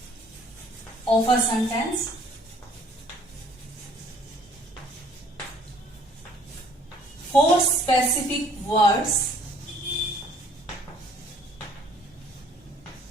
of a sentence, for specific words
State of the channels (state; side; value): normal; both; correlation 0.58